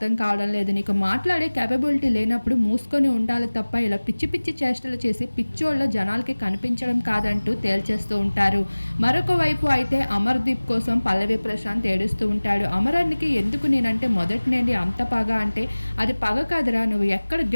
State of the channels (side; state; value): both; inverted; correlation -1.00